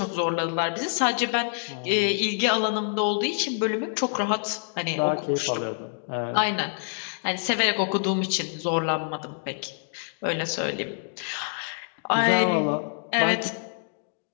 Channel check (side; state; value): right; silent; digital silence